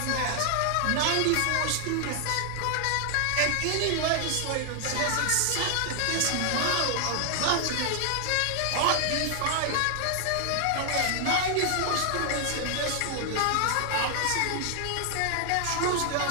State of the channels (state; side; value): different; both; correlation 0.00